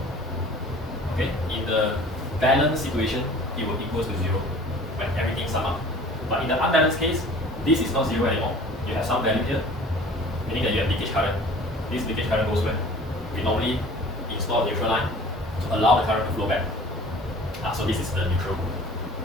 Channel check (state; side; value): normal; both; correlation 0.46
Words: Okay, in the balanced situation, it will equal to 0 when everything sum up. But in the unbalanced case, this is not 0 anymore. You have some value here, meaning that you have leakage current. This leakage current goes where? We normally install a neutral line to allow the current to flow back. So this is the neutral